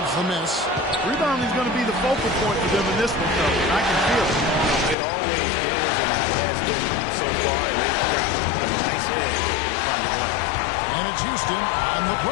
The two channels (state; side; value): drops out; right; at 5.0 s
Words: the miss. Rebounding is going to be the focal point for them in this one, though. I can feel it. It always is, and it has been so far, and they've got a nice edge finding life. And it's Houston on the